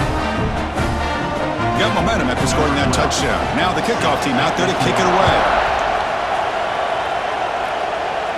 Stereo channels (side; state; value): both; identical; correlation 1.00